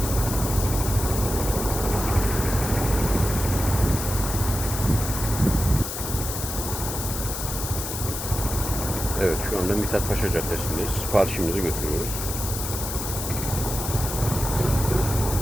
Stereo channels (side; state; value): left; noise; hiss, 5 dB below the sound